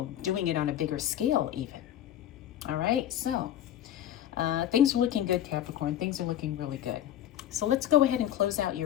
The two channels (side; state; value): right; quieter; 11.4 dB